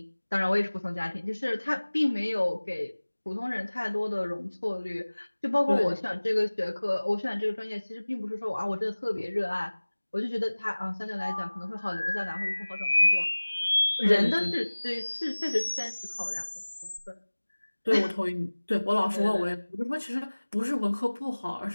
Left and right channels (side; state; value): both; inverted; correlation -1.00